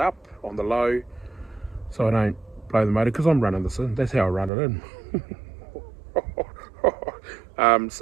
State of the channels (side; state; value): left; drops out; at 4.5 s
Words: on the low so I don't blow the motor, because I'm running this in. That's how I run it in.